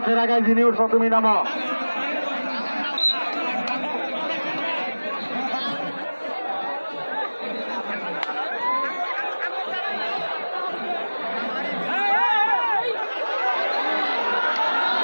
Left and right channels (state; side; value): inverted; both; correlation -1.00